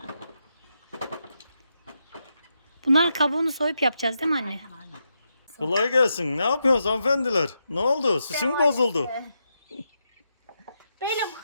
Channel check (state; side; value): inverted; both; correlation -0.84